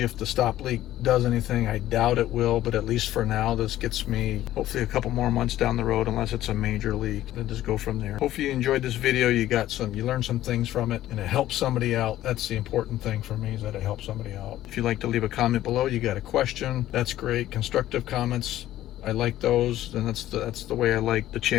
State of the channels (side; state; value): right; quieter; 13.8 dB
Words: the stop leak does anything. I doubt it will, but at least for now, this gets me hopefully a couple more months down the road, unless it's a major leak, and just go from there. Hopefully you enjoyed this video. You learned some things from it, and it helped somebody out. That's the important thing for me, is that it helps somebody out. If you'd like to leave a comment below, you got a question, that's great. Constructive comments, I like those, and that's the way I like the